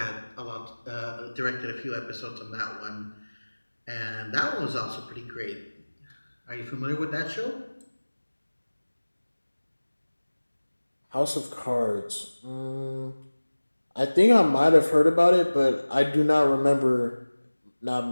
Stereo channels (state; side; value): inverted; both; correlation -1.00